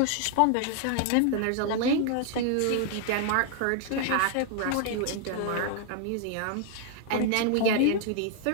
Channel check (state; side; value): different; both; correlation 0.00